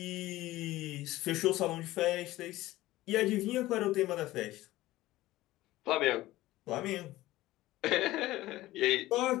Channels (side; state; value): right; quieter; 16.9 dB